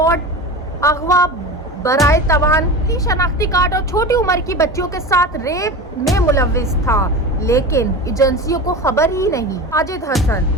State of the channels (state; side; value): normal; both; correlation 0.29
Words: अगवा, बराए तवान, शनाख्ती कार्ड और छोटी उम्र की बच्चियों के साथ रेप में मुलव्विस था, लेकिन एजेंसियों को खबर ही नहीं। साजिद हसन,